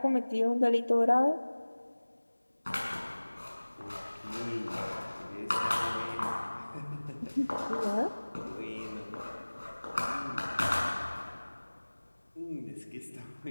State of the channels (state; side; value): inverted; both; correlation -1.00